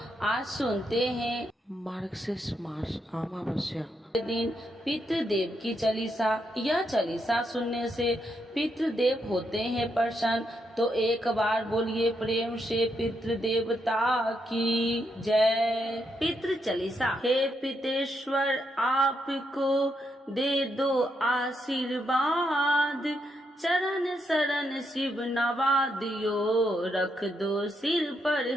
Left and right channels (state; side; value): normal; both; correlation 0.80